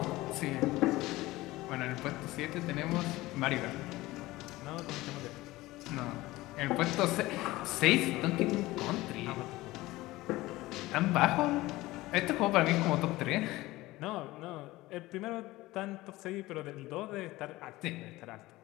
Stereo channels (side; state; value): right; quieter; 18.7 dB